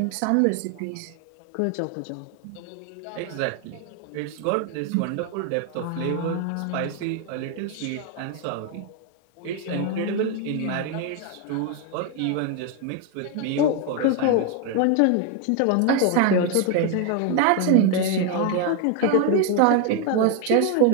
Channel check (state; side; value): different; both; correlation 0.01